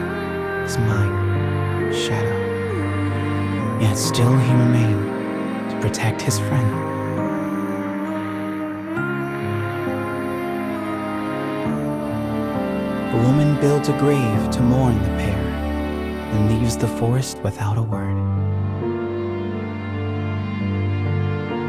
his mind shadow. Yet still he remained to protect his friend. The woman builds a grave to mourn the pair and leaves the forest without a word.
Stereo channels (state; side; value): identical; both; correlation 1.00